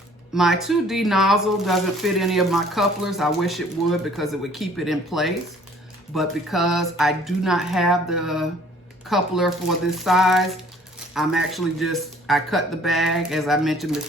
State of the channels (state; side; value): normal; both; correlation 0.56